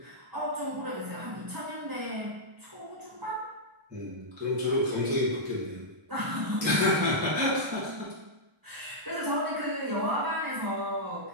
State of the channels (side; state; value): left; late; 1.0 ms